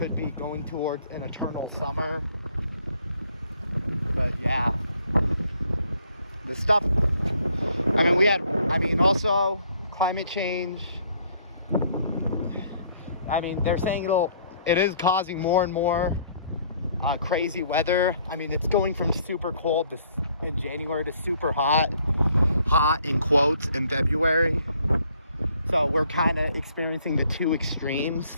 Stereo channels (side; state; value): both; inverted; correlation -0.63